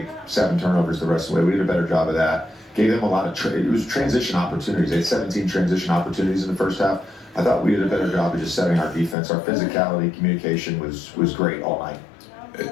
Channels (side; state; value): right; drops out; at 9.2 s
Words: 7 turnovers the rest of the way. We did a better job of that. Gave them a lot of it was transition opportunities. They had 17 transition opportunities in the first half. I thought we did a better job of just setting our defense. Our physicality, communication was great all night.